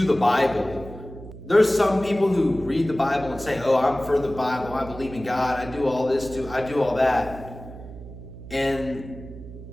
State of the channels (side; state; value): right; noise; hum, 14 dB below the sound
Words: the Bible. There's some people who read the Bible and say, oh, I'm for the Bible, I believe in God, I do all this too, I do all that. And